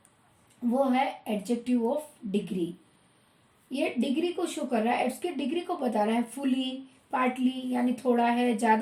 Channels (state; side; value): identical; both; correlation 1.00